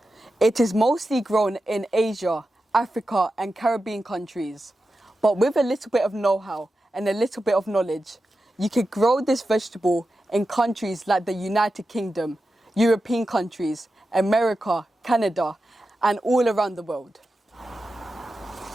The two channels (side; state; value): both; normal; correlation 0.91